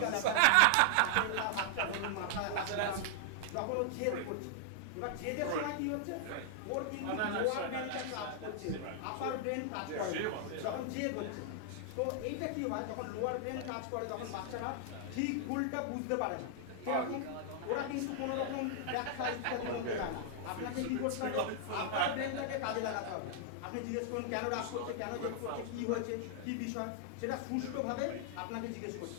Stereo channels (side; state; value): both; different; correlation -0.01